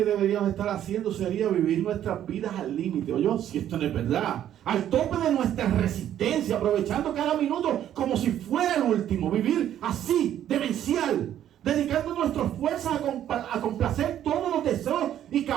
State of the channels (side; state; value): left; quieter; 11.1 dB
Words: deberíamos estar haciendo sería vivir nuestras vidas al límite. Oye, si esto no es verdad, al tope de nuestra resistencia, aprovechando cada minuto como si fuera el último. Vivir así, demencial, dedicando nuestras fuerzas a complacer todos los deseos y